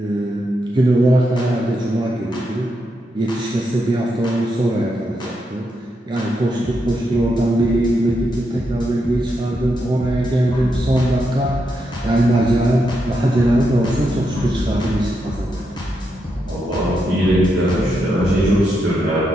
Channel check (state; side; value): normal; both; correlation 0.83